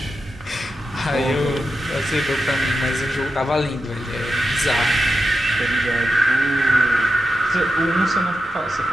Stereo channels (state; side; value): normal; both; correlation 0.89